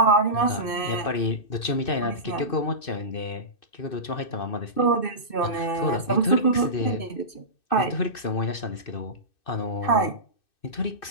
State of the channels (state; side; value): late; right; 2.6 ms